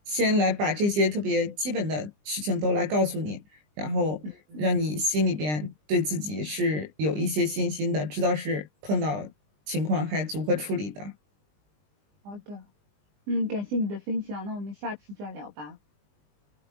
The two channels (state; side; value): late; left; 20 ms